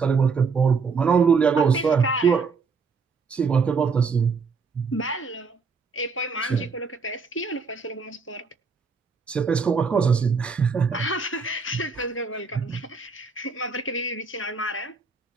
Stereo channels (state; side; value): quieter; left; 4.9 dB